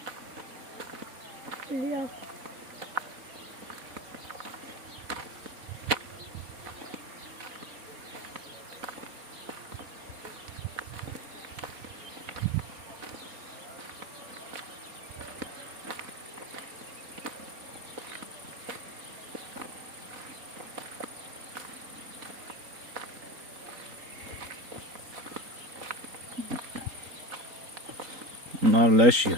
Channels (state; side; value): late; left; 4.0 ms